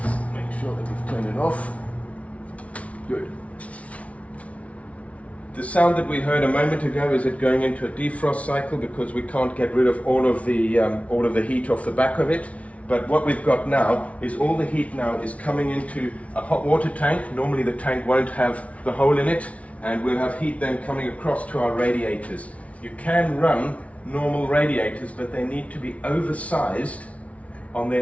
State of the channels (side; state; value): right; late; 0.065 ms